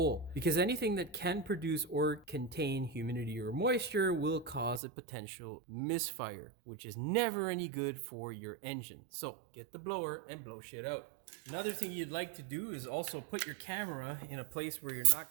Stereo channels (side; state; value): left; drops out; at 4.8 s